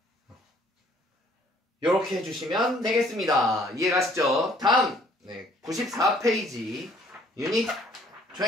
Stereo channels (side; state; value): both; normal; correlation 0.60